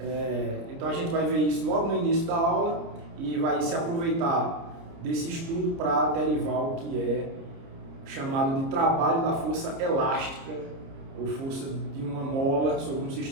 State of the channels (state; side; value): late; left; 30 ms